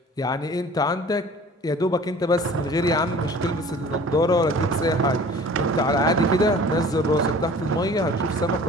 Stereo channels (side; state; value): both; normal; correlation 0.46